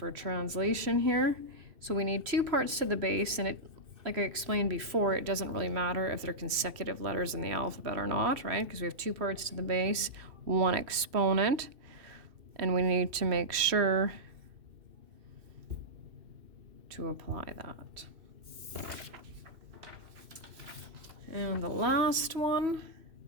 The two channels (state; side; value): late; left; 2.6 ms